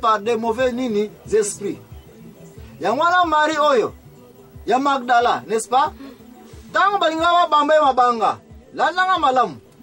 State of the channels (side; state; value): both; identical; correlation 1.00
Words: des mauvais nini esprits. Ya mwana Marie oyo ya Magdala, n'est-ce pas? Tango balinga bamba mabanga. Landanga malamu.